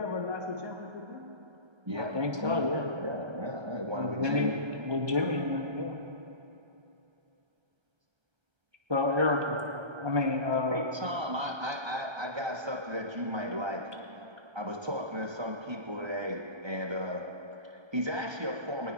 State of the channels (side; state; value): left; late; 1.2 ms